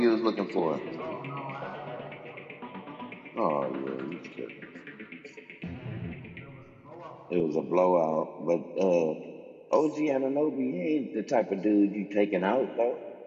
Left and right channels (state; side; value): identical; both; correlation 1.00